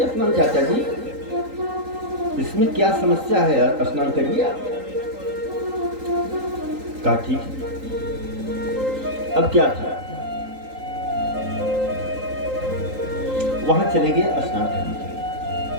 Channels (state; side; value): late; left; 3.8 ms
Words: स्नान चाचा जी, इसमें क्या समस्या है, स्नान करिए आप। कहा ठीक है। अब क्या था, वहां चले गए स्नान करने के लिए।